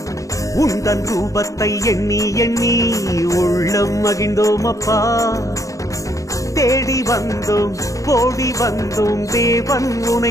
உந்தன் ரூபத்தை எண்ணி எண்ணி உள்ளம் மகிழ்ந்தோமப்பா தேடி வந்தோம் ஓடி வந்தோம் தேவன் உனை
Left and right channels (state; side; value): late; right; 0.16 ms